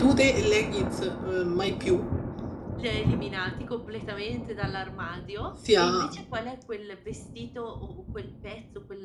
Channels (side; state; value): both; identical; correlation 1.00